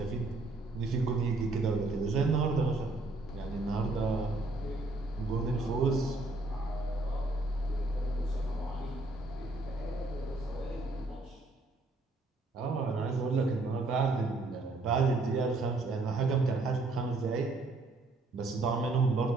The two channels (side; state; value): left; quieter; 3.1 dB